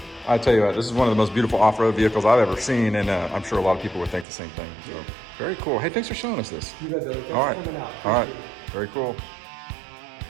I tell you what, this is one of the most beautiful off-road vehicles I've ever seen, and I'm sure a lot of people would think the same thing. So very cool. Hey, thanks for showing us this. You bet, Billy. Thanks all right, for coming out. All right, very cool.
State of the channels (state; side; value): drops out; left; at 4.2 s